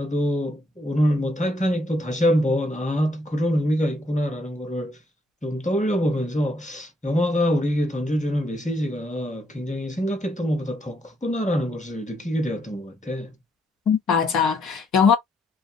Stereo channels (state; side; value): normal; both; correlation 0.74